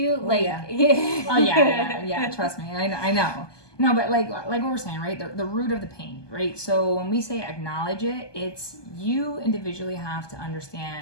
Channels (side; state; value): right; late; 1.2 ms